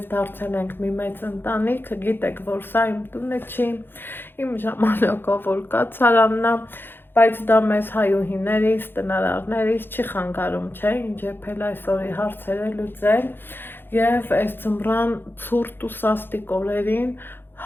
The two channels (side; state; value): right; late; 0.10 ms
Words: դարձել ենք մի մեծ ընտանիք, գիտեք, որ սա իմ տունը չի, իմ ժամանակով որ կացարանն է, բայց դա մեզ հայուհիներից, տնարարներից չի խանգարում, չէ, ինչ եփել այսօրի հարցերը լուծել և այս ձմռան ցուրտ ու սաստիկ օրերին